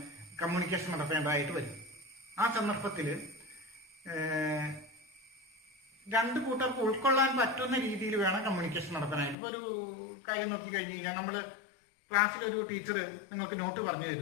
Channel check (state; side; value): drops out; right; at 9.3 s